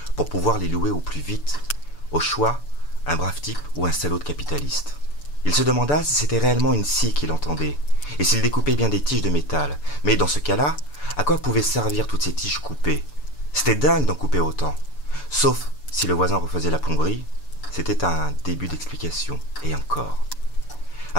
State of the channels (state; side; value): late; right; 6.9 ms